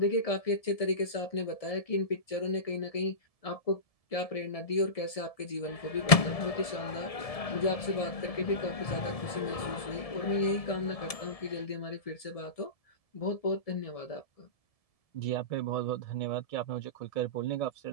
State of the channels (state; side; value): late; right; 1.7 ms